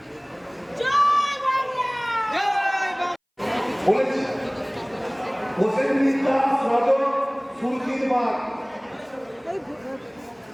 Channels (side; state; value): both; identical; correlation 1.00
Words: বলেছি হোসেন মিত্রা সদর সুরকির বাগ,